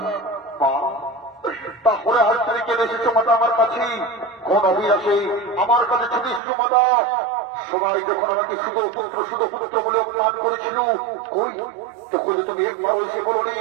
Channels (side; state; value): left; drops out; at 6.4 s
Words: তারপরে হাত থেকে কেটে এসেছো মাতা আমার কাছে কোন অভিলাষে আমার কাছে ছুটে এসেছো মাতা সবাই যখন আমাকে শুধু পুত্র বলে অপমান করেছিল কই তখন তুমি একবার এসে বলো নি